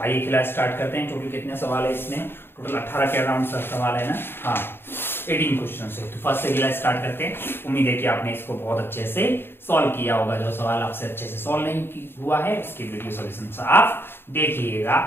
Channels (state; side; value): late; right; 0.11 ms